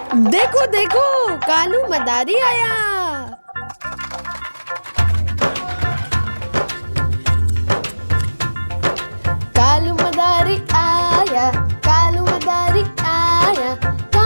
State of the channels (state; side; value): inverted; both; correlation -1.00